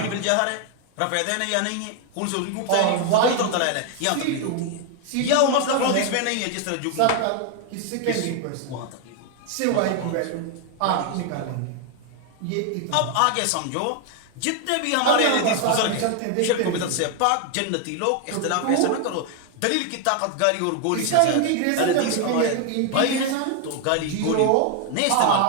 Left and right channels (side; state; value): both; different; correlation 0.00